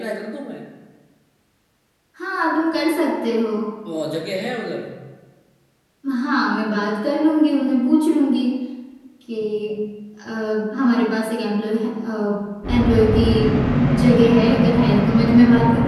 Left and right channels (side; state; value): both; identical; correlation 1.00